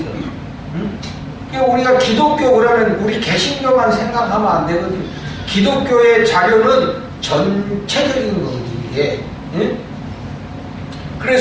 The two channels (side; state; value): both; identical; correlation 1.00